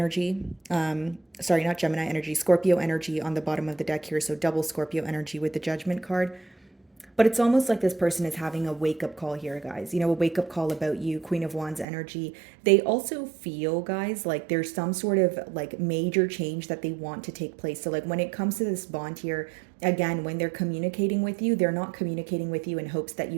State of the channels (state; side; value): drops out; left; at 11.9 s